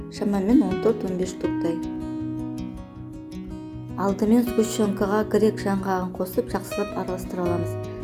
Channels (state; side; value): identical; both; correlation 1.00